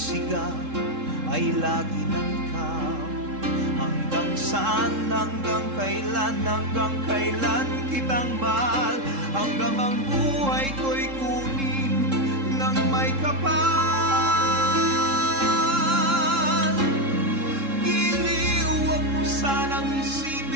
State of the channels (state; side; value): late; left; 3.7 ms